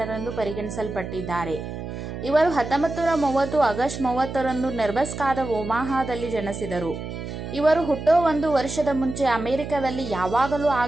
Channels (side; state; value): right; noise; hum, 8 dB below the sound